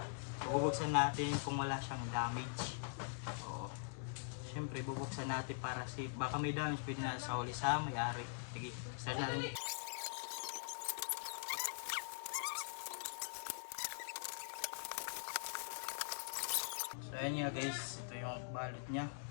So bubuksan natin kung wala siyang damage. O, syempre bubuksan natin para safe. Baka may damage, pwede na sa huli sa may-ari. Sige, start natin. So ayan nga guys, ito yung balot niya.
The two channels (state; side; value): silent; right; digital silence